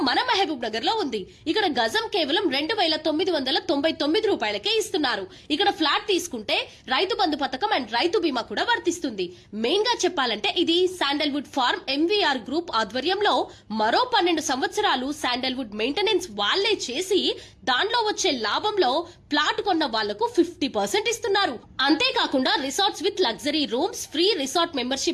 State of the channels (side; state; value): both; identical; correlation 1.00